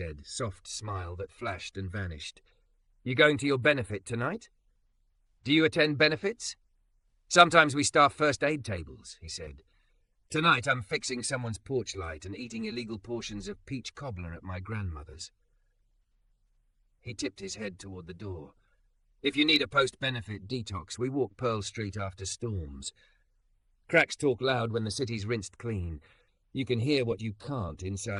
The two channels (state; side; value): identical; both; correlation 1.00